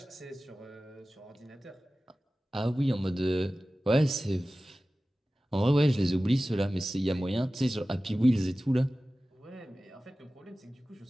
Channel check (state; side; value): normal; both; correlation 0.96